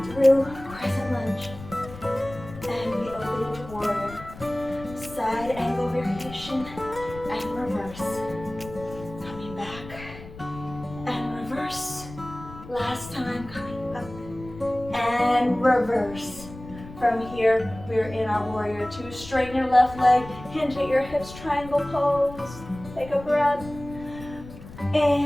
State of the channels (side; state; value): left; noise; rumble, 15 dB below the sound